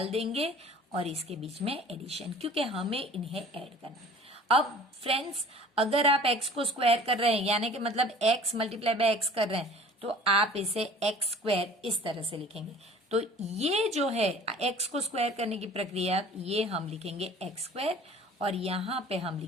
देंगे और इसके बीच में एडिशन, क्योंकि हमें इन्हें ऐड करना है। अब फ्रेंड्स, अगर आप x को स्क्वायर कर रहे हैं, यानी कि मतलब x मल्टीप्लाई बाय x कर रहे हैं, तो आप इसे x स्क्वायर इस तरह से लिखेंगे। तो ये जो है x को स्क्वायर करने की प्रक्रिया, ये हम लिखेंगे x स्क्वायर, और यहाँ पे हम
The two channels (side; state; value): both; normal; correlation 0.47